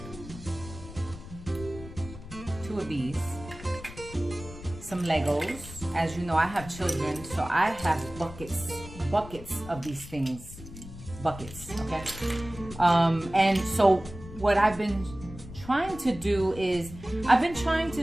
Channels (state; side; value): noise; left; rumble, 14 dB below the sound